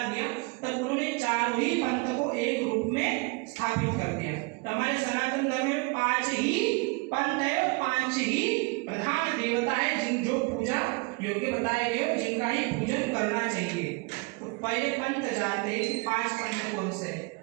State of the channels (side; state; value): left; quieter; 28.4 dB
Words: दिया तब उन्होंने चारों ही पंथ को एक रूप में स्थापित कर दिया। तो हमारे सनातन धर्म में 5 ही पंथ है और 5 ही प्रधान देवता है जिन जो पूजा योग्य बताए गए, जिनका ही पूजन करना चाहिए। तो पहले पंथ जानते हैं 5 पंथ कौन से?